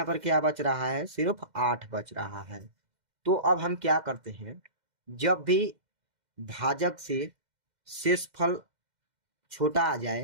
पर क्या बच रहा है? सिर्फ 8 बच रहा है। तो अब हम क्या करते हैं, जब भी भाजक से शेषफल छोटा आ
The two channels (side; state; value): left; late; 2.1 ms